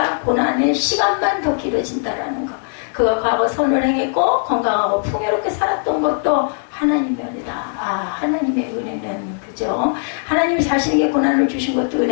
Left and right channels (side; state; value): right; silent; digital silence